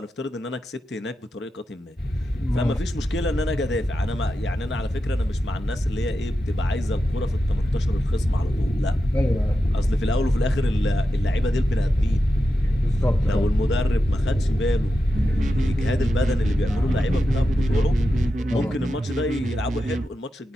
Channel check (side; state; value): both; normal; correlation 0.90